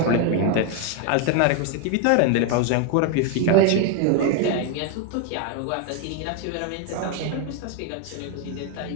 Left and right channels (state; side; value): different; both; correlation 0.01